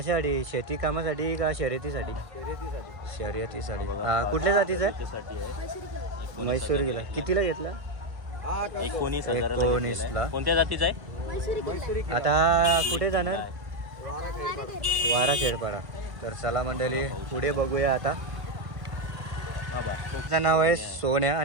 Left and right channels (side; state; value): left; late; 1.5 ms